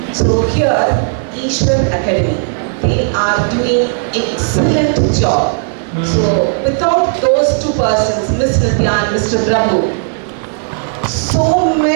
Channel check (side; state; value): left; silent; digital silence